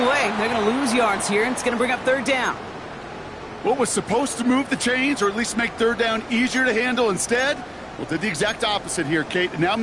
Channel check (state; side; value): identical; both; correlation 1.00